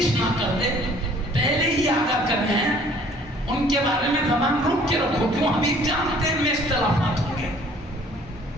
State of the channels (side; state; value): both; normal; correlation 0.56